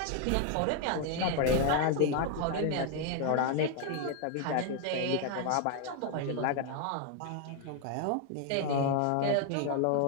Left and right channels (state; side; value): different; both; correlation 0.00